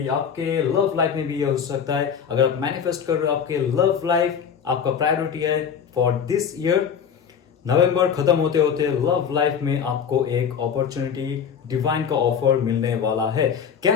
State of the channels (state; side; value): quieter; right; 7.4 dB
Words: आपके लव लाइफ में भी ये हो सकता है। अगर आप मैनिफेस्ट कर रहे हो, आपके लव लाइफ आपका प्रायोरिटी है फॉर दिस ईयर। नवंबर खत्म होते होते लव लाइफ में आपको एक अपॉर्चुनिटी, डिवाइन का ऑफर मिलने वाला है।